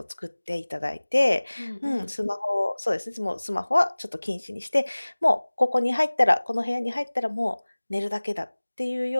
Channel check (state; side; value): inverted; both; correlation -1.00